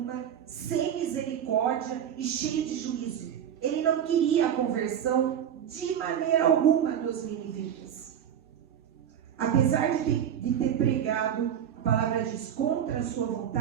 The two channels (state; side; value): quieter; left; 9.2 dB